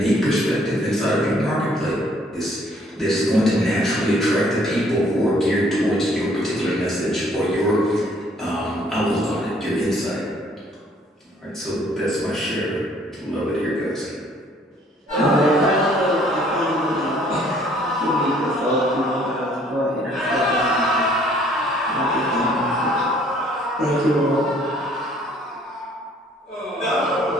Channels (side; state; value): both; normal; correlation 0.61